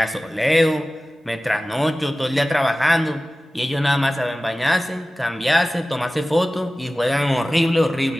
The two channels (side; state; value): both; normal; correlation 0.96